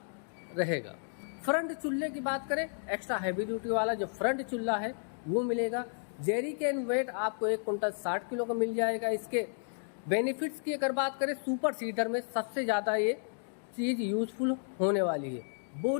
रहेगा। फ्रंट चूल्हे की बात करें, एक्स्ट्रा हैवी ड्यूटी वाला जो फ्रंट चूल्हा है वो मिलेगा। जेरी कैन वेट आपको 1 कुंटल 60 किलो का मिल जाएगा। इसके बेनिफिट्स की अगर बात करें, सुपर सीडर में सबसे ज़्यादा ये चीज़ यूजफुल होने वाली है।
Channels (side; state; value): right; silent; digital silence